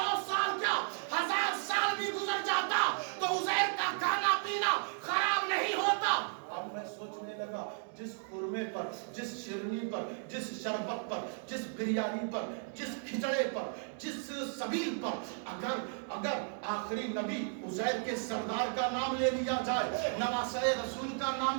साल क्या, 1000 साल भी गुजर जाता तो उजैर का खाना पीना खराब नहीं होता। अब मैं सोचने लगा, जिस खुरमे पर, जिस शिरनी पर, जिस शरबत पर, जिस बिरयानी पर, जिस खिचड़े पर, जिस सबील पर अगर आखिरी नबी उजैर के सरदार का नाम ले लिया जाए, नवासे रसूल का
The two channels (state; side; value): silent; left; 55 dB below the other